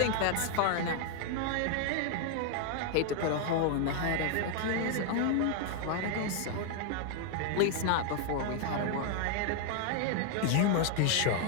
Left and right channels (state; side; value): different; both; correlation 0.00